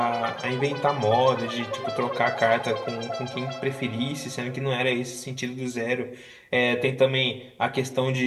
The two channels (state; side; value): identical; both; correlation 1.00